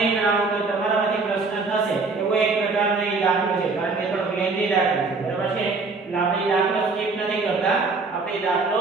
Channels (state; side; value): quieter; left; 4.0 dB